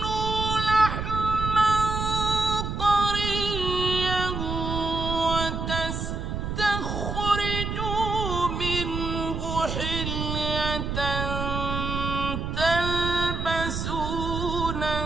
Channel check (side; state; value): right; noise; rumble, 3 dB below the sound